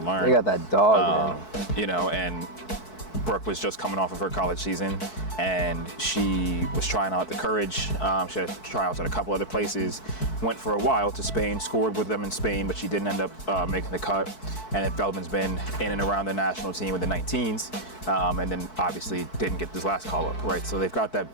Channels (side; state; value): right; late; 4.6 ms